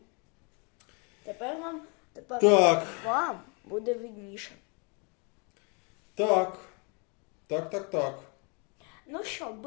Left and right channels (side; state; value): right; quieter; 33.6 dB